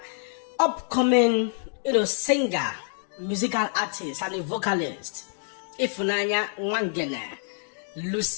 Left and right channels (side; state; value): right; silent; digital silence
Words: upcoming, singer, musical artist, and a vocalist, Ifunanya Nwangene,